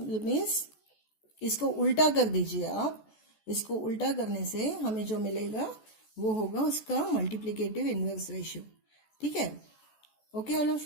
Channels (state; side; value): late; right; 14 ms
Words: means इसको उल्टा कर दीजिए आप. इसको उल्टा करने से हमें जो मिलेगा वो होगा उसका मल्टीप्लिकेटिव इनवर्स रेशियो. ठीक है? Okay, all of